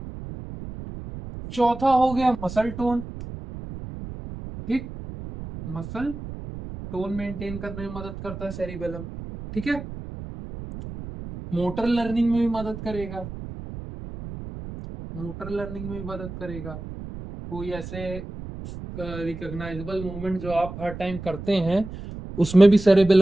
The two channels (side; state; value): right; noise; rumble, 11 dB below the sound